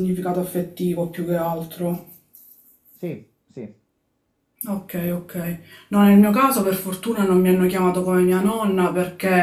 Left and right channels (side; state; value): both; identical; correlation 1.00